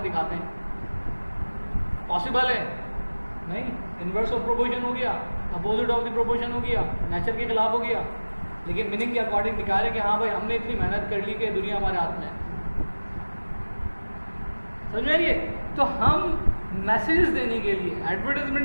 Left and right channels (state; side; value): inverted; both; correlation -1.00